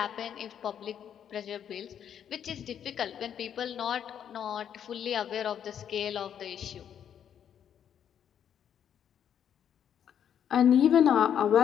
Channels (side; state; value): right; quieter; 9.0 dB